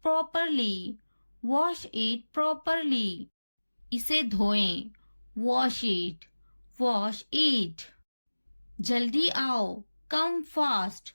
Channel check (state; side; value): inverted; both; correlation -1.00